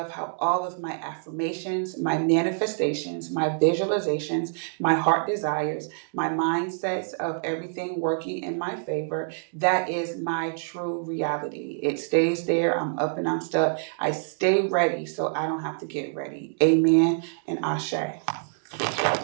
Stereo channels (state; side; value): silent; left; digital silence